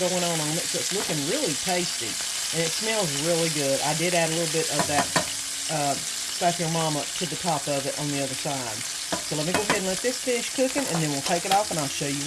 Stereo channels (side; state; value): both; identical; correlation 1.00